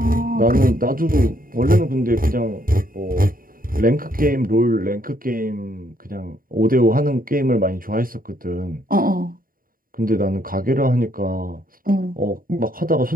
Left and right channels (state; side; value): late; left; 0.41 ms